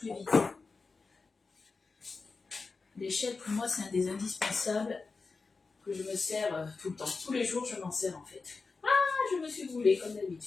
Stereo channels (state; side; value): quieter; right; 4.3 dB